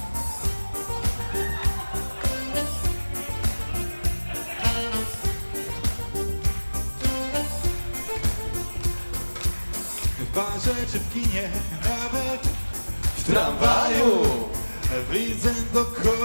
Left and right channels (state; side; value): inverted; both; correlation -1.00